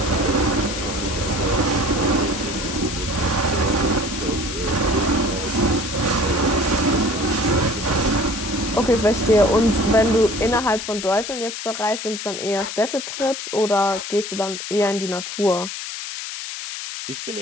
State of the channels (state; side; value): noise; left; hiss, 7 dB below the sound